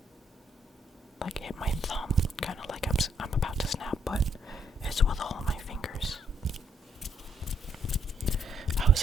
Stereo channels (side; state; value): both; normal; correlation 0.72